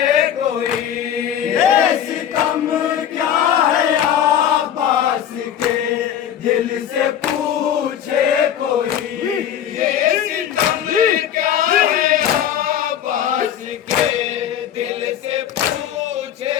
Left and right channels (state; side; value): quieter; right; 9.9 dB